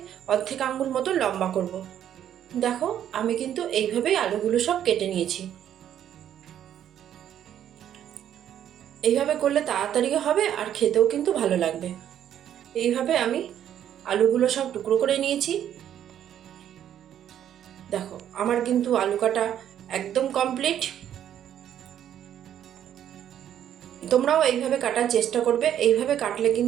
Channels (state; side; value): quieter; left; 10.3 dB